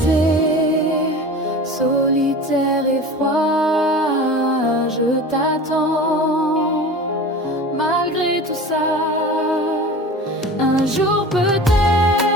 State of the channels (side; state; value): both; normal; correlation 0.36